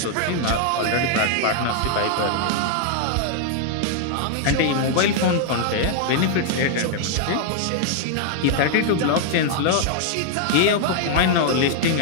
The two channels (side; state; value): both; different; correlation 0.00